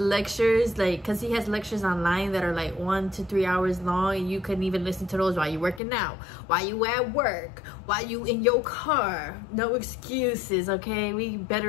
like, because he has lectures online that are like 1 to 3 hours long, and you couldn't even listen to those while you're working out, while you at work, while you in your car. No excuses, okay? We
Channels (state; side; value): drops out; right; at 5.8 s